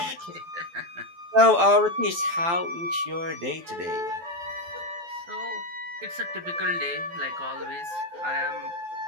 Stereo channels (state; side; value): late; left; 12 ms